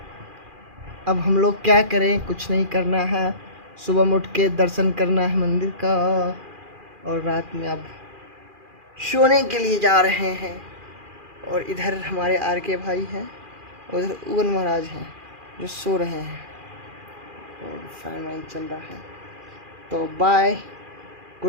अब हम लोग क्या करें, कुछ नहीं करना है। सुबह में उठ के दर्शन करना है मंदिर का, और रात में अब सोने के लिए जा रहे हैं। और इधर हमारे आर के भाई हैं, और उधर उगन महाराज हैं जो सो रहे हैं, और फैन वैन चल रहा है। तो बाय,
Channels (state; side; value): late; left; 2.4 ms